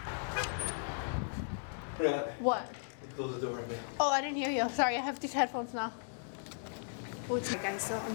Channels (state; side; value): silent; right; digital silence